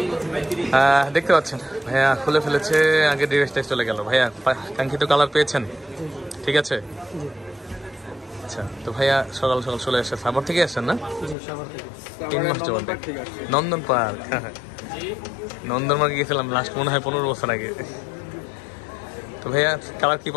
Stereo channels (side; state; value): right; drops out; at 11.4 s